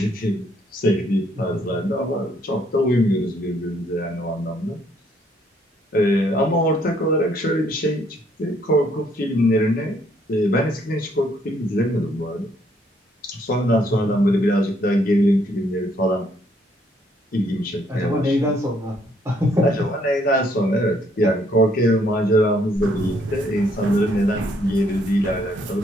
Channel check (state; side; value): normal; both; correlation 0.68